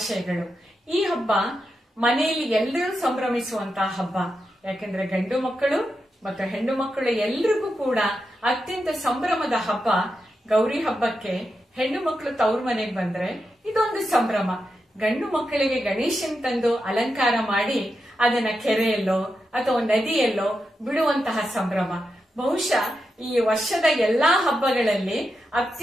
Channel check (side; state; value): both; normal; correlation 0.87